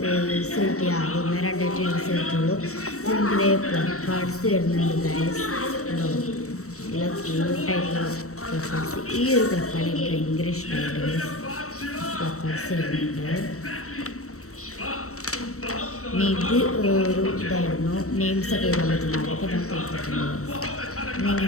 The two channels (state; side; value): late; right; 0.65 ms